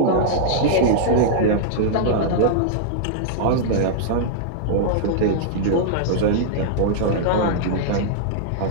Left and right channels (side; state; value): both; different; correlation -0.01